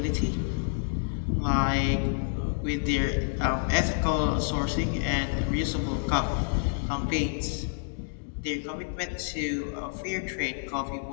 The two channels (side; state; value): right; silent; digital silence